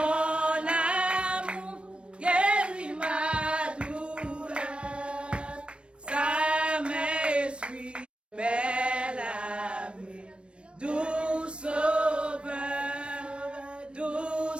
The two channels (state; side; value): late; left; 0.058 ms